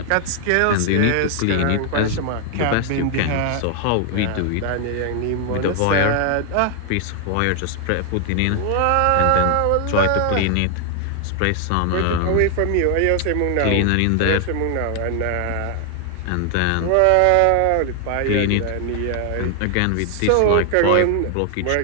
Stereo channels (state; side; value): different; both; correlation 0.00